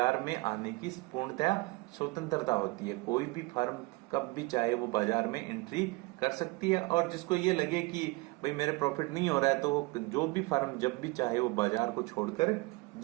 में आने की पूर्णतया स्वतंत्रता होती है। कोई भी फर्म कब भी चाहे वो बाजार में एंट्री कर सकती है, और जिसको ये लगे कि भाई मेरे प्रॉफिट नहीं हो रहा है, तो वो जो भी फर्म जब भी चाहे वो बाजार को छोड़कर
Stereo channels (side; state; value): left; quieter; 24.6 dB